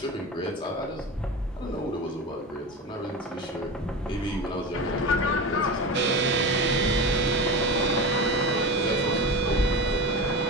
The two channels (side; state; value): both; normal; correlation 0.26